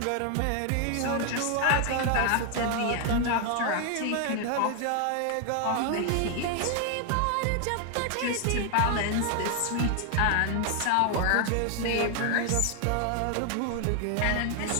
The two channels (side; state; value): both; different; correlation 0.00